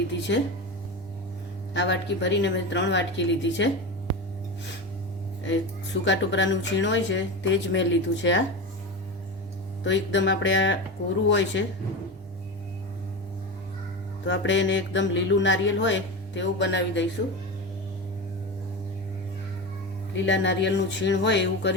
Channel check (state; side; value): normal; both; correlation 0.23